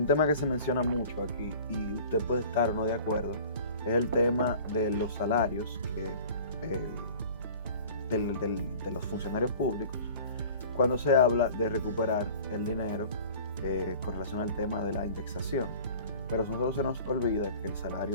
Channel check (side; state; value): both; inverted; correlation -0.45